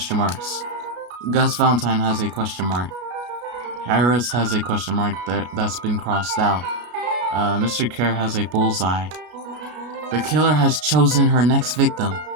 marks. Gus Valentine has a question mark. Harris has a question mark that's been crossed out. Mr. Kerr has a bullseye. The killer has chosen her next victim.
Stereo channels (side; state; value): left; late; 33 ms